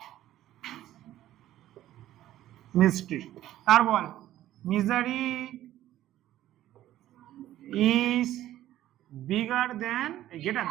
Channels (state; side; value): quieter; left; 13.4 dB